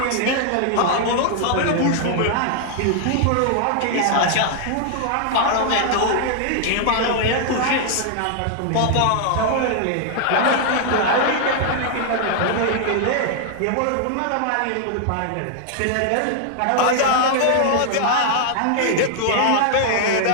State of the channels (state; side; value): different; both; correlation 0.00